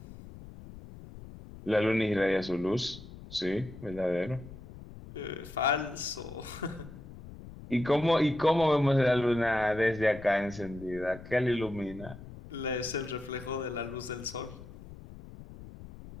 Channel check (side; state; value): left; noise; rumble, 16 dB below the sound